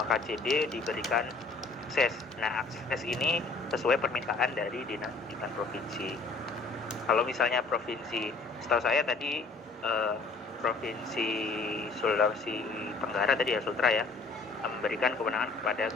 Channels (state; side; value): quieter; right; 3.8 dB